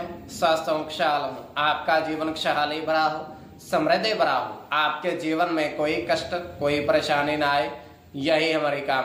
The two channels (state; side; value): identical; both; correlation 1.00